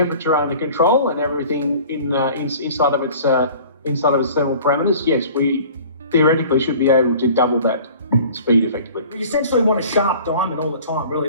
under control and everything inside of its thermal parameters, yes, we theoretically should be able to double that speed effectively. You essentially want a sharp diamond all the time, really,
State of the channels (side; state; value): both; inverted; correlation -0.46